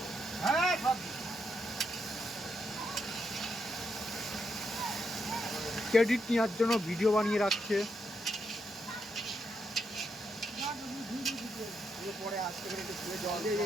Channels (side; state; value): both; normal; correlation 0.80